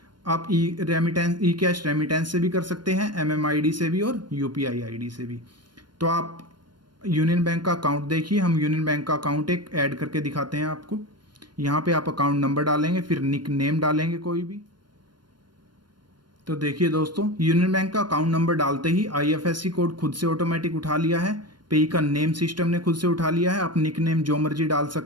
आप ई कैश रेमिटेंस से भी कर सकते हैं, एमएमआईडी से भी और यूपीआई आईडी से भी। तो आप यूनियन बैंक का अकाउंट देखिए। हम यूनियन बैंक का अकाउंट एक ऐड करके दिखाते हैं आपको। यहाँ पे आप अकाउंट नंबर डालेंगे, फिर निक नेम डालेंगे कोई भी। तो देखिए दोस्तों, यूनियन बैंक का अकाउंट नंबर डालते ही आईएफएससी कोड खुद से ऑटोमेटिक उठा लिया है। पेई का नेम सिस्टम ने खुद से उठा लिया है। आप निक नेम जो मर्जी डाल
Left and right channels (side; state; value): left; late; 0.72 ms